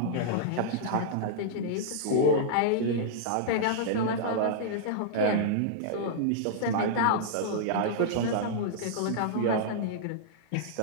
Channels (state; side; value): different; both; correlation -0.02